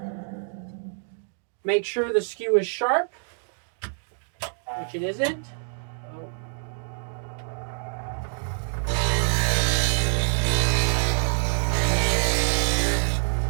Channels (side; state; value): left; silent; digital silence